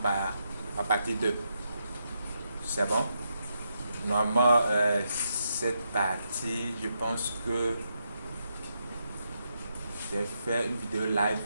à partir de. C'est bon? Normalement, cette partie, je pense que j'ai fait une vidéo live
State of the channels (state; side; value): inverted; both; correlation -0.82